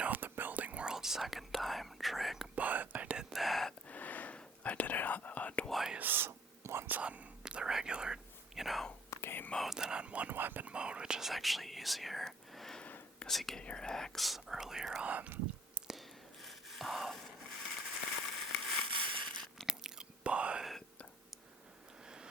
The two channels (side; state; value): both; normal; correlation 0.57